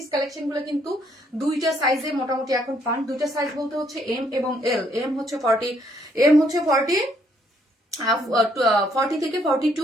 কালেকশন গুলো কিন্তু দুইটা সাইজে মোটামুটি এখন পান, দুইটা সাইজ বলতে হচ্ছে এম এবং এল। এম হচ্ছে 40 থেকে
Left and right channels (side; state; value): both; normal; correlation 0.69